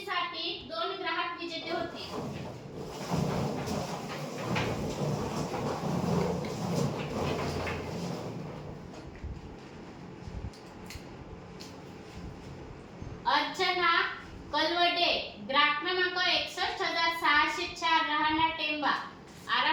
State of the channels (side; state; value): both; identical; correlation 1.00